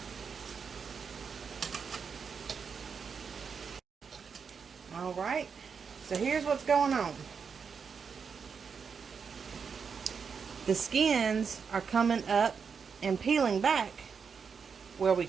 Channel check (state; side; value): quieter; left; 6.1 dB